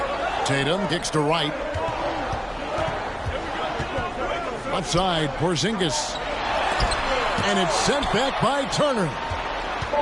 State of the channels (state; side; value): identical; both; correlation 1.00